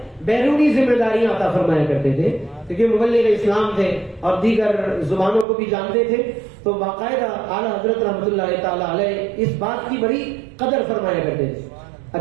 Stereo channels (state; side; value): drops out; left; at 5.5 s